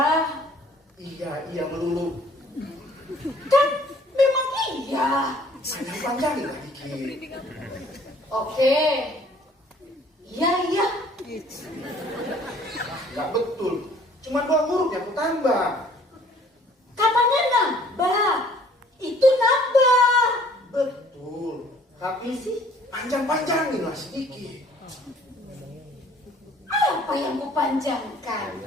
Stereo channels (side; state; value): both; normal; correlation 0.56